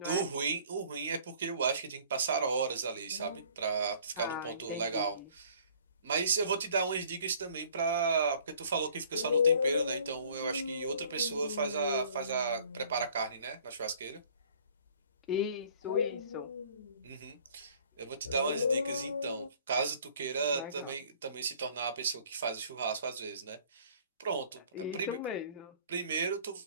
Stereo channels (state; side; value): inverted; both; correlation -0.55